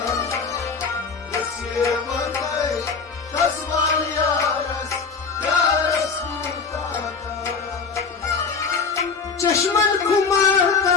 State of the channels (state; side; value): quieter; right; 5.1 dB